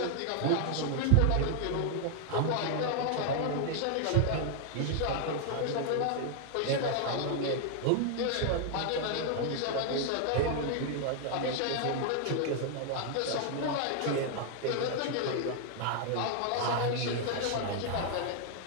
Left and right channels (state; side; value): different; both; correlation 0.00